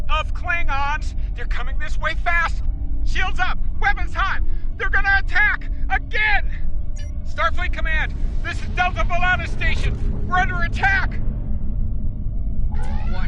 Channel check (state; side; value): identical; both; correlation 1.00